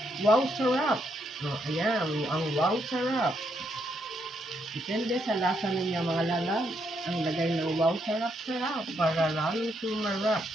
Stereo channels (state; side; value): normal; both; correlation 0.77